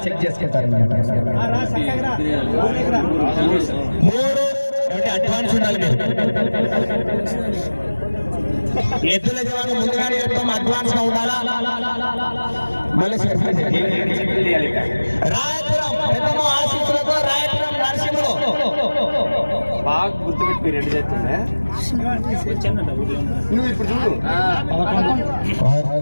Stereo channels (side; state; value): both; inverted; correlation -1.00